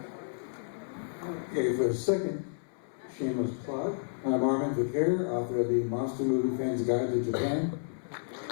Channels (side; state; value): right; silent; 57 dB below the other